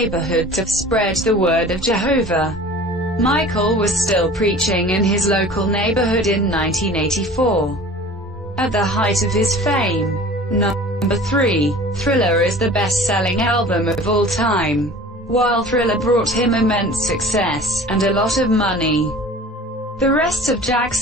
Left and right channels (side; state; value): both; normal; correlation 0.43